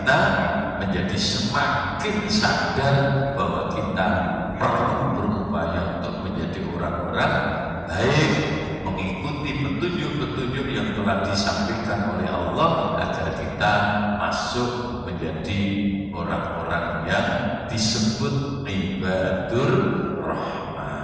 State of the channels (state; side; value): identical; both; correlation 1.00